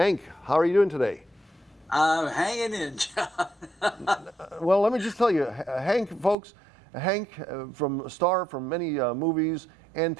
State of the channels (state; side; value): drops out; left; at 6.4 s